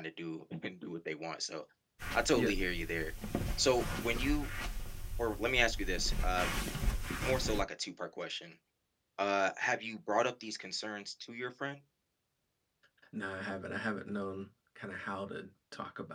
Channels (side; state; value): both; identical; correlation 1.00